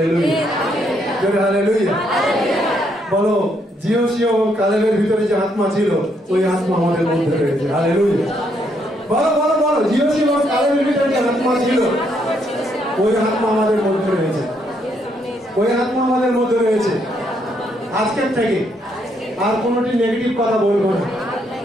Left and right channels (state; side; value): normal; both; correlation 0.73